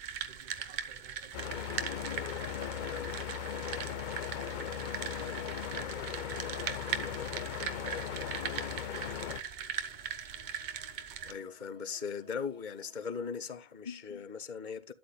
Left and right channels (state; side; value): late; left; 2.2 ms